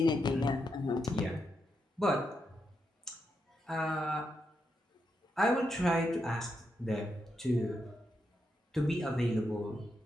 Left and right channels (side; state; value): both; normal; correlation 0.83